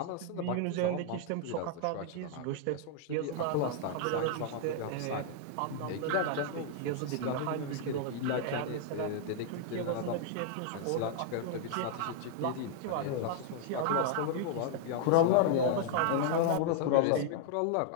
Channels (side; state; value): both; different; correlation -0.01